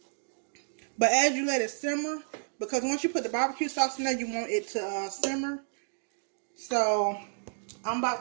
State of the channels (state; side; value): silent; left; digital silence